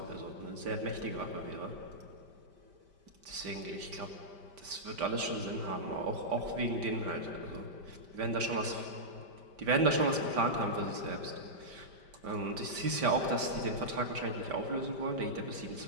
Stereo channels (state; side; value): late; left; 5.1 ms